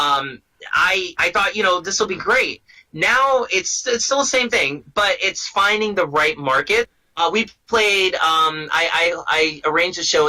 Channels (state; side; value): identical; both; correlation 1.00